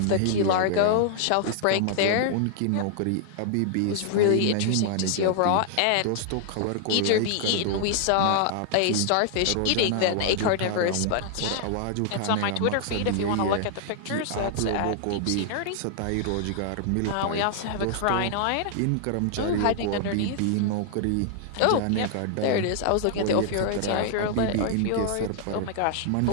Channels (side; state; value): both; different; correlation -0.01